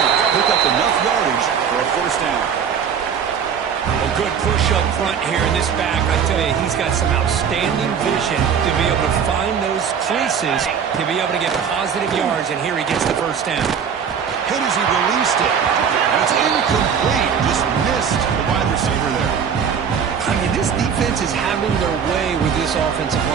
pick up enough yardage for a first down. A good push up front here in this back. I tell you, he's got some outstanding vision to be able to find those creases, to be able to get positive yards, and here he gets the first down. Hit as he released it. And it's incomplete. Just missed the wide receiver there. I mean, this defense is having their way with this offensive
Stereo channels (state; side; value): quieter; left; 7.2 dB